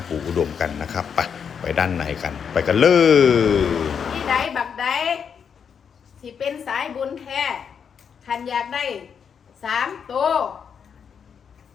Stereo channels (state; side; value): quieter; right; 7.1 dB